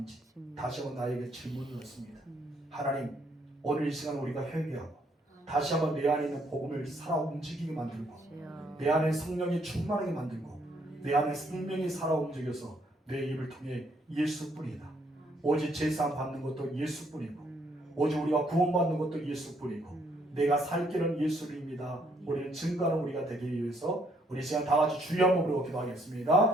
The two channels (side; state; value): both; normal; correlation 0.69